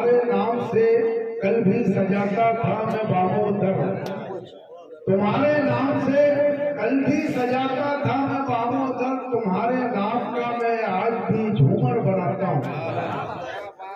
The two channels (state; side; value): identical; both; correlation 1.00